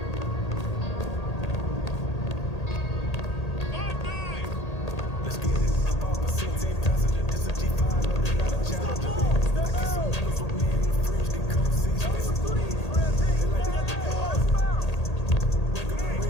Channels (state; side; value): late; right; 1.8 ms